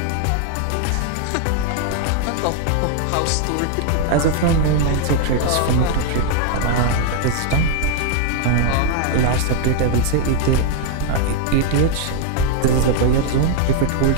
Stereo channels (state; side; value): different; both; correlation -0.01